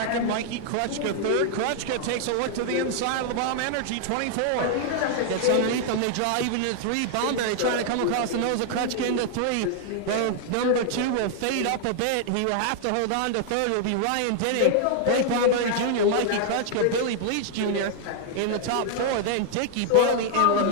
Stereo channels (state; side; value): different; both; correlation 0.00